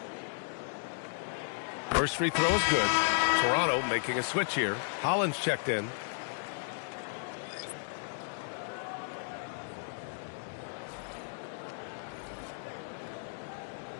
First free throw is good. Toronto making a switch here. Hollins checked in.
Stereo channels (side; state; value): right; silent; digital silence